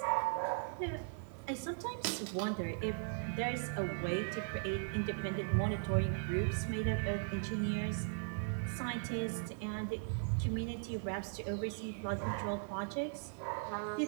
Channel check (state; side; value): silent; left; 52 dB below the other